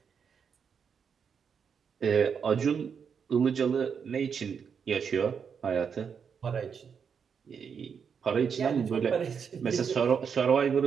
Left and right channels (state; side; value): quieter; left; 6.7 dB